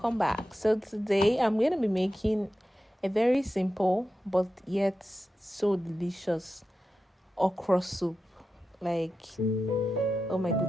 back. So today I'm going to be making a very simple but yet so delicious okra soup. Like, oh my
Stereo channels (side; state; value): both; normal; correlation 0.91